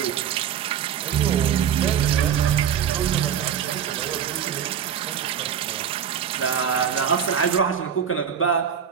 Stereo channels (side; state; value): left; quieter; 8.3 dB